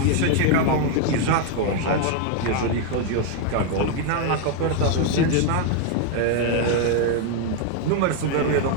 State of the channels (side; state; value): both; different; correlation 0.01